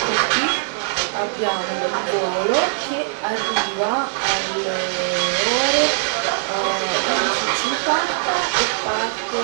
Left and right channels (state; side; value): silent; left; 65 dB below the other